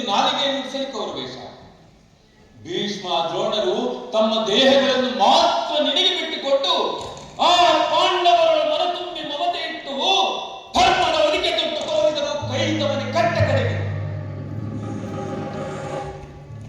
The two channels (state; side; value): identical; both; correlation 1.00